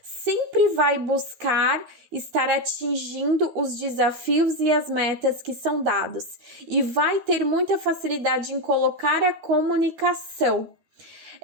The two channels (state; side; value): late; left; 12 ms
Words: Sempre vai buscar estar atingindo os desafios e as metas que são dados. E vai ter muita facilidade em colocar a comunicação.